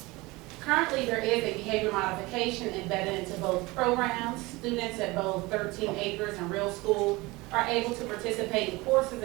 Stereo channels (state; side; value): quieter; left; 22.5 dB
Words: Currently, there is a behavior modification embedded into both programs. Students at both 13 Acres and Real School are able to participate in courses